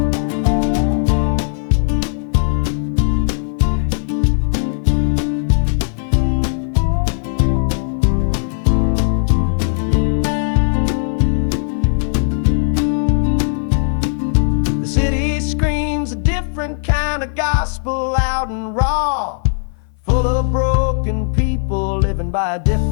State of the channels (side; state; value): right; silent; 58 dB below the other